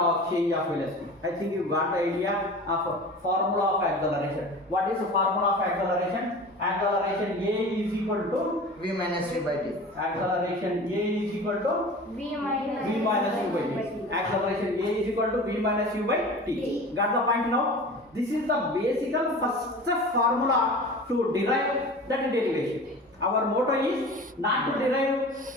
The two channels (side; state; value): both; normal; correlation 0.37